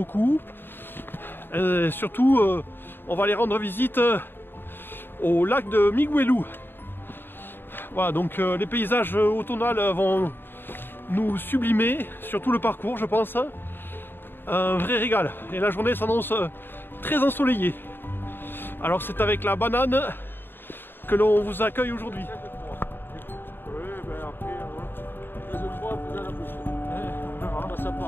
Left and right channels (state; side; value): late; right; 0.099 ms